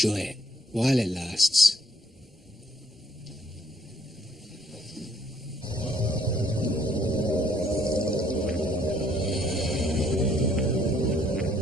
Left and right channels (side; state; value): both; normal; correlation 0.65